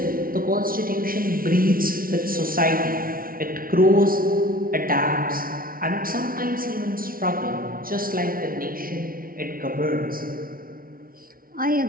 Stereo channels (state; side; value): late; left; 0.42 ms